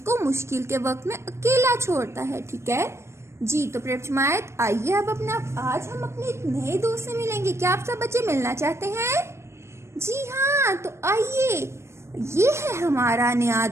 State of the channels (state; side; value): late; left; 0.13 ms